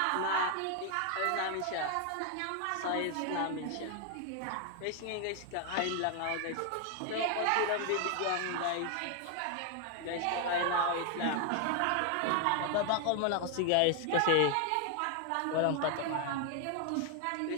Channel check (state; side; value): different; both; correlation 0.00